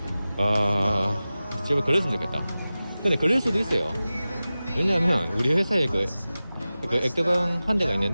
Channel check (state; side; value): inverted; both; correlation -0.96